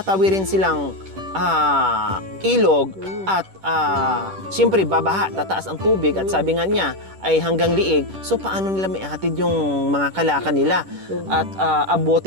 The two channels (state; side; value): late; left; 10 ms